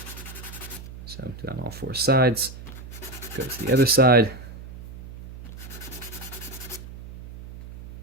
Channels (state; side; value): noise; right; hum, 13 dB below the sound